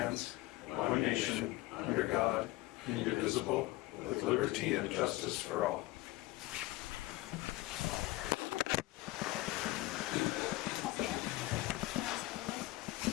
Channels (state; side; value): quieter; right; 18.7 dB